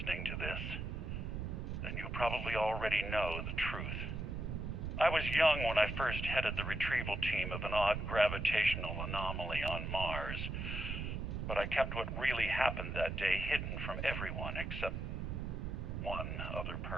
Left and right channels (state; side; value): noise; right; rumble, 4 dB below the sound